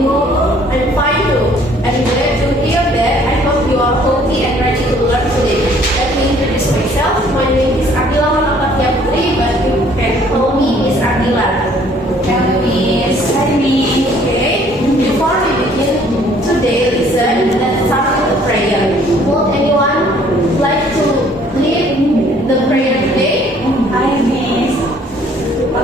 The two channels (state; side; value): normal; both; correlation 0.59